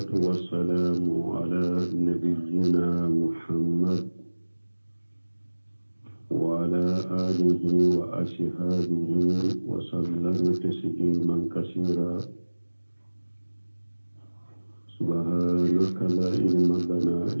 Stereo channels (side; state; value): both; inverted; correlation -1.00